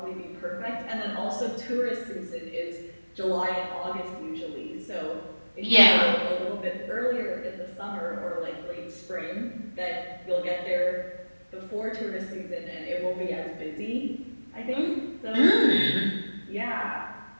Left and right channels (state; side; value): inverted; both; correlation -1.00